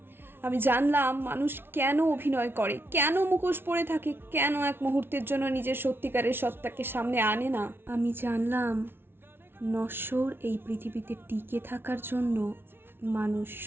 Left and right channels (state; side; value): late; left; 0.11 ms